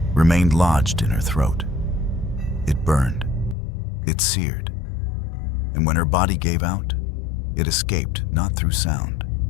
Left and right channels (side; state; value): right; drops out; at 3.6 s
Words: remained lodged in her throat. It burned, it seared, and when her body gave out, it escaped not through sound,